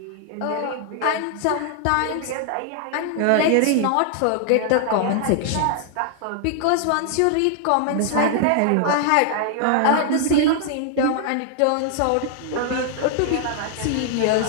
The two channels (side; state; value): both; different; correlation 0.00